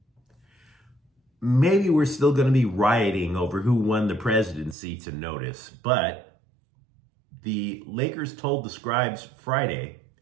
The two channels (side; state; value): left; drops out; at 4.8 s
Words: Maybe we're still going to be rioting over who won the presidency to notice, but the Lakers told the Scribes Friday